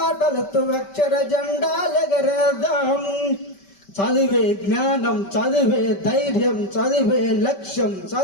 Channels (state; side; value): late; right; 5.2 ms